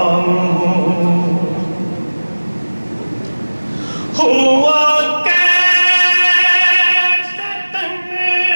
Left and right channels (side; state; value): both; inverted; correlation -1.00